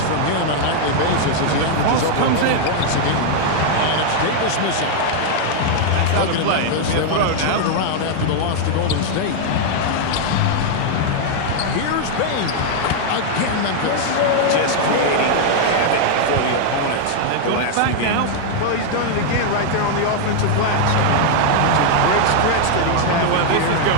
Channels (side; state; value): both; different; correlation 0.00